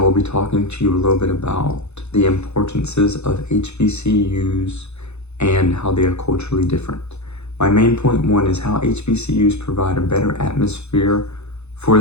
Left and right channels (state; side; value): late; right; 0.81 ms